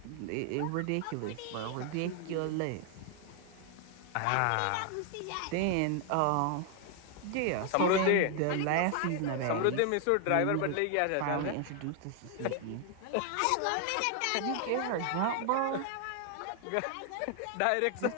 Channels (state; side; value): different; both; correlation 0.00